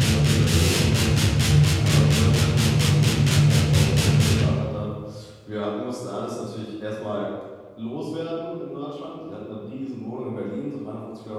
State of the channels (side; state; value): both; identical; correlation 1.00